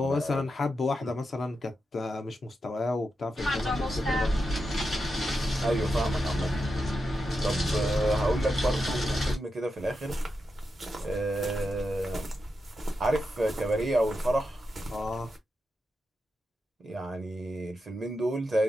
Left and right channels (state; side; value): normal; both; correlation 0.87